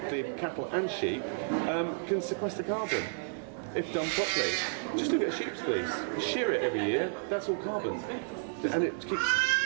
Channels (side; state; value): left; silent; 57 dB below the other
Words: cattle and sheep, can sequester carbon if done properly. Just look at a sheep's fleece. You shear it every year, that's all carbon. And it keeps